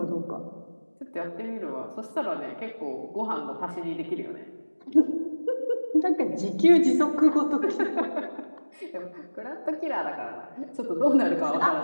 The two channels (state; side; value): inverted; both; correlation -1.00